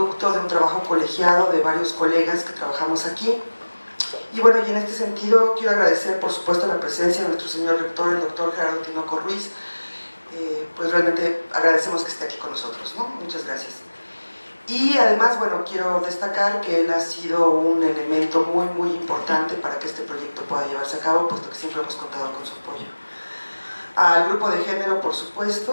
de un trabajo colegiado de varios colegas que trabajamos aquí. Y bueno, y en este sentido quiero agradecer por supuesto la presencia de nuestro señor rector, el doctor Gerardo Tinoco Ruiz. Pues realmente agradecemos que esté aquí con nosotros, ¿no? Muchas gracias. Y además, bueno, quiero destacar que él ha sido un elemento muy importante para que este proyecto pueda llevarse a cabo, puesto que siempre hemos contado con su apoyo. Al grupo de género, por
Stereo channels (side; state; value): both; inverted; correlation -1.00